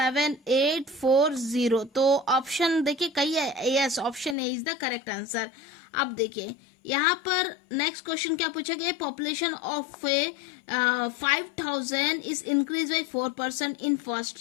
तो ऑप्शन देखिए कही है, yes option A is the correct answer. अब देखिए यहाँ पर नेक्स्ट क्वेश्चन क्या पूछा गया, population of 5000 is increase by 4% in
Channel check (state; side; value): drops out; right; at 4.4 s